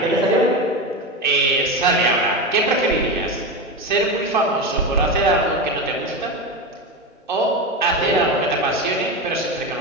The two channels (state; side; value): normal; both; correlation 0.19